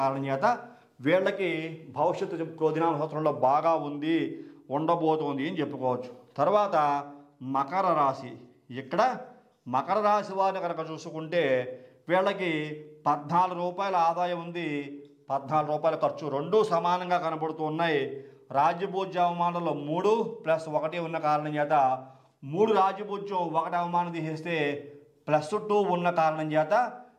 కారణం చేత వీళ్ళకి భవిష్యత్తు క్రోధినామ సంవత్సరంలో బాగా ఉండబోతోంది అని చెప్పుకోవచ్చు. తర్వాత మకర రాశి. ఇక్కడ మకర రాశి వారిని కనుక చూసుకుంటే వీళ్ళకి 14 రూపాయల ఆదాయం ఉంది, 14 రూపాయల ఖర్చు, రెండూ సమానంగా కనబడుతూ ఉన్నాయి. రాజ్యభూజ్య అవమానంలో 3 + 1 ఉన్న కారణం చేత 3 రాజ్యభూజ్యం, 1 అవమానం తీసేస్తే +2 ఉన్న కారణం చేత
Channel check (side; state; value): both; identical; correlation 1.00